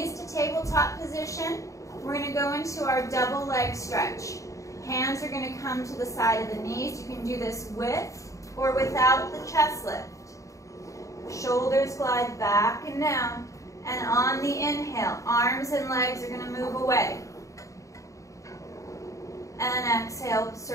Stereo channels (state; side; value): late; right; 0.16 ms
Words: to tabletop position, we're going to go into our double leg stretch. Hands are going to come to the side of the knees. You can do this with or without the chest lift. Shoulders glide back and down. And on the inhale, arms and legs are going to move away. And exhale,